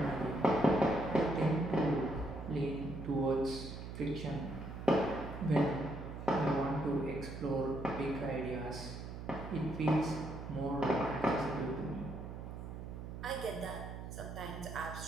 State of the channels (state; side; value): noise; right; hum, 9 dB below the sound